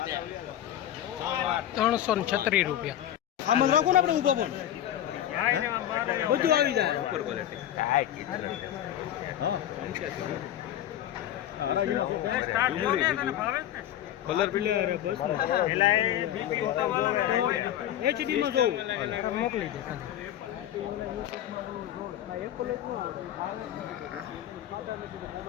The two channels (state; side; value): quieter; right; 11.8 dB